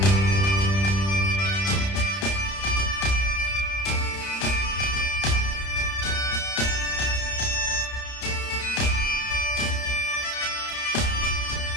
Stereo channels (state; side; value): late; right; 31 ms